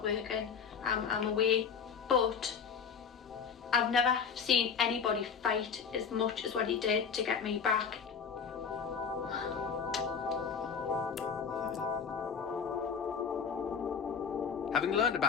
working. I'm away. But I've never seen anybody fight as much as what he did to get me back. Having learned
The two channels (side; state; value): right; quieter; 6.4 dB